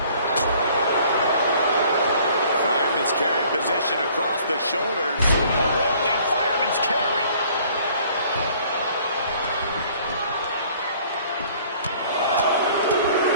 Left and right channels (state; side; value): inverted; both; correlation -0.56